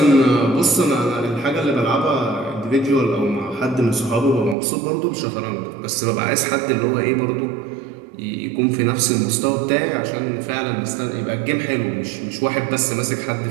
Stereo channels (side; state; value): left; drops out; at 4.5 s